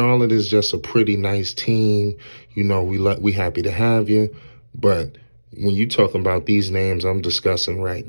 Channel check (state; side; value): inverted; both; correlation -1.00